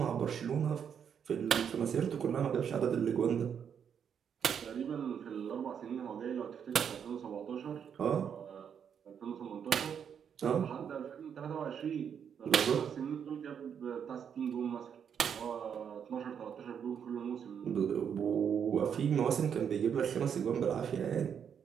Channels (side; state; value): left; quieter; 7.8 dB